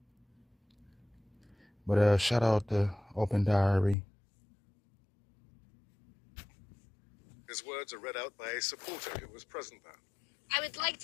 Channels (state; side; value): drops out; right; at 4.0 s